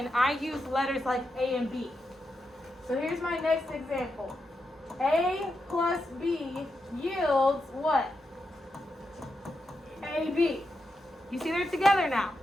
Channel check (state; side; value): normal; both; correlation 0.86